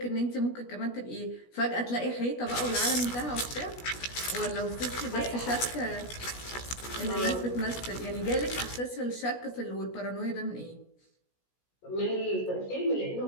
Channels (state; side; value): late; right; 16 ms